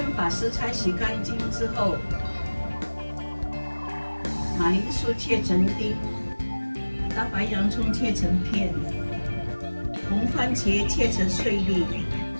把食材洗干净之后，马铃薯切成丁，大白洋葱切成片，红番茄切成碎粒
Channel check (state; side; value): inverted; both; correlation -1.00